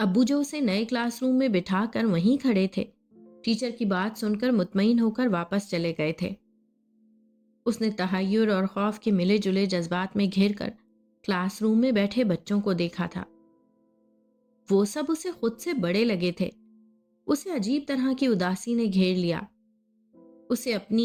جو اسے نئے کلاس روم میں بٹھا کر وہیں کھڑے تھے، ٹیچر کی بات سن کر مطمئن ہو کر واپس چلے گئے تھے۔ اس نے تحیر اور خوف کے ملے جلے جذبات میں گھر کر کلاس روم میں بیٹھے بچوں کو دیکھا تھا۔ وہ سب اسے خود سے بڑے لگے تھے۔ اسے عجیب طرح کی اداسی نے گھیر لیا۔ اسے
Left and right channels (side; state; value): both; identical; correlation 1.00